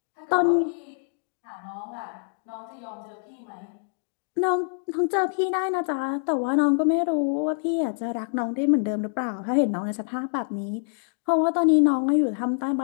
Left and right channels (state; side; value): silent; right; digital silence